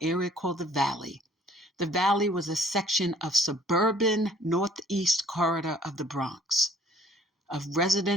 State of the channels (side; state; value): both; normal; correlation 0.56